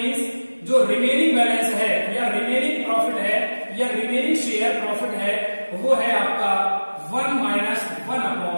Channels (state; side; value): inverted; both; correlation -1.00